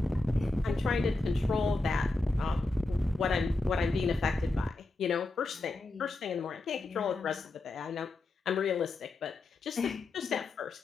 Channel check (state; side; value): quieter; right; 3.1 dB